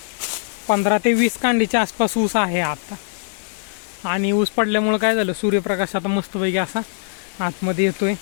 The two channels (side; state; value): right; silent; digital silence